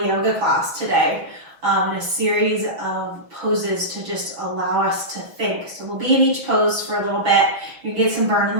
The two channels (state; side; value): late; left; 6.1 ms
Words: yoga class today, and a series of poses to just allow us to think. So we'll be in each pose for a little bit. You get some burn in